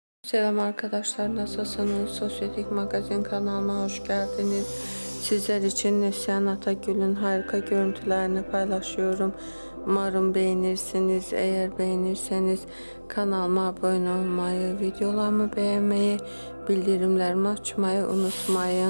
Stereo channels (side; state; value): both; inverted; correlation -1.00